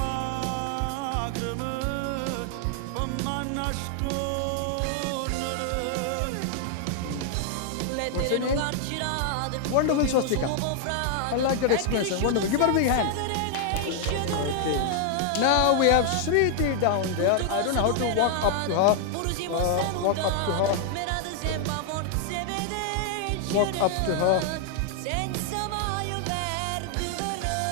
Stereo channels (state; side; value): different; both; correlation -0.01